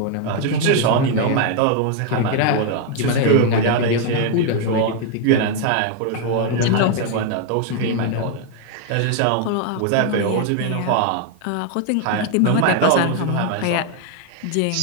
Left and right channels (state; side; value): different; both; correlation 0.01